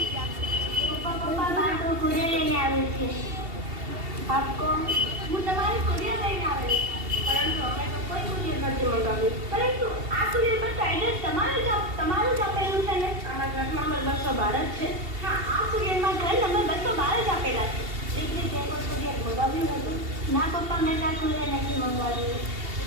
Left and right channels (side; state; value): left; late; 2.7 ms